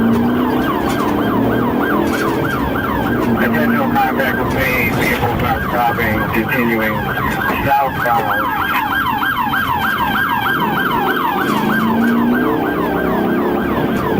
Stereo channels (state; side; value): identical; both; correlation 1.00